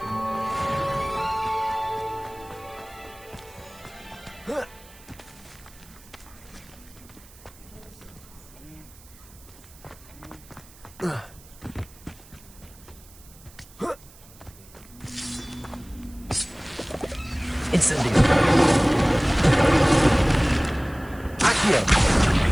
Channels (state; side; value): noise; right; hiss, 23 dB below the sound